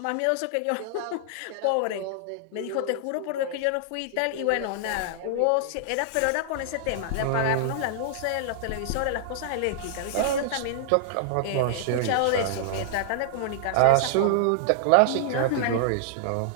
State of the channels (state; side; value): different; both; correlation -0.01